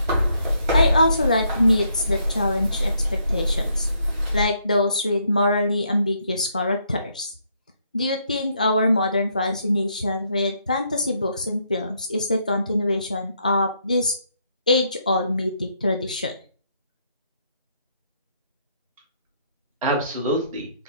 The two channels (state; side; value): inverted; both; correlation -0.73